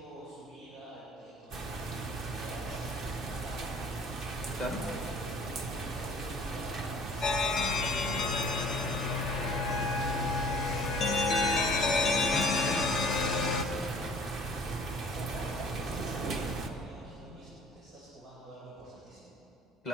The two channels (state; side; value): normal; both; correlation 0.51